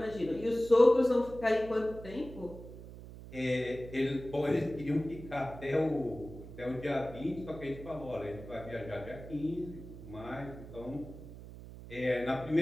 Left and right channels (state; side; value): noise; right; hum, 14 dB below the sound